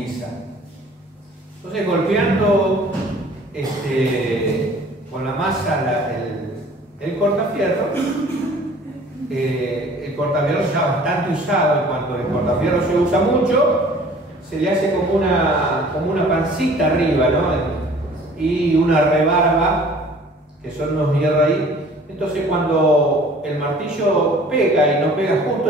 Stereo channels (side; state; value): both; normal; correlation 0.50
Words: Entonces, golpeando con la masa el cortafierro, el cortafierro ya bastante usado, en cuanto el cortafierro se usa mucho, se le hace como una pancita arriba, ¿no? Y una rebarba, que son unos hierros ahí. Entonces, cuando el martillo pega y no pega